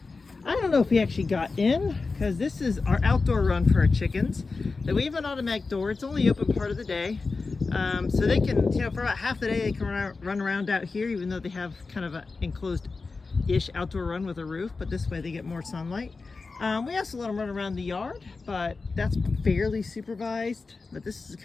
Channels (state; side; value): quieter; right; 4.1 dB